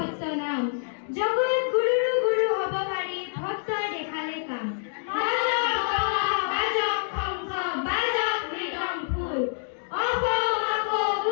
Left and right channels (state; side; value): silent; right; digital silence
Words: নাম, জগত গুৰুৰো গুৰু হ'ব পাৰি ভক্তই দেখালে কাম। বাজক দবা বাজক শংখ বাজক মৃদংগোল, অসম আকৌ